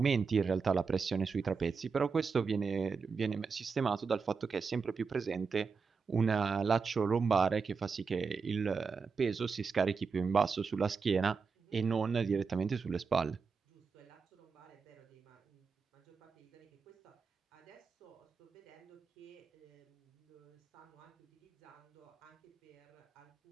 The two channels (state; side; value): quieter; left; 5.2 dB